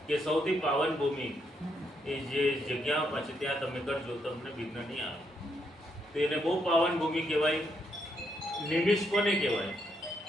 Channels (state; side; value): normal; both; correlation 0.77